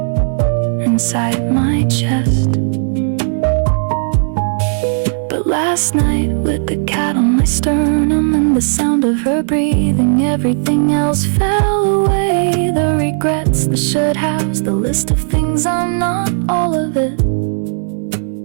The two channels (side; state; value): left; silent; digital silence